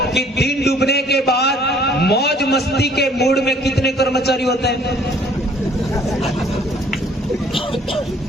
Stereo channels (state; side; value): normal; both; correlation 0.58